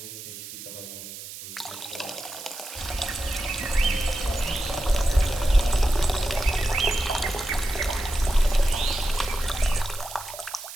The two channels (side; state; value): right; noise; hiss, 12 dB below the sound